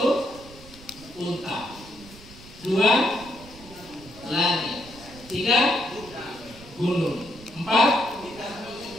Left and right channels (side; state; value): right; noise; rumble, 19 dB below the sound